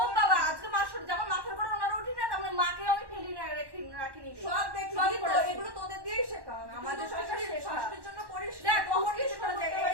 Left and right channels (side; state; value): left; late; 1.1 ms